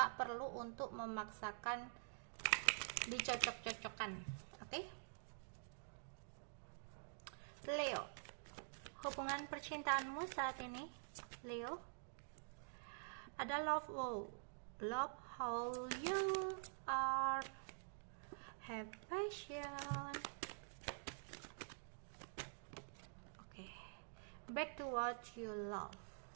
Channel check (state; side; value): silent; left; digital silence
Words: perlu untuk memaksakan dicocok-cocokkan. Oke, Leo, hubungan percintaanmu saat ini, Leo, ada love how you are, have passion. Back to what you love.